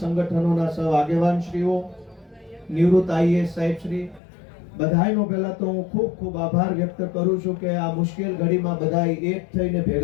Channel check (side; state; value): right; drops out; at 4.2 s